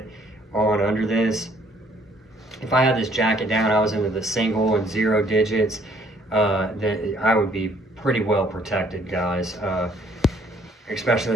on under this. If I had this jacket down, I was into the single and 0 digits, then I would be pretty well protected, guys. Especially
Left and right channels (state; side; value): normal; both; correlation 0.63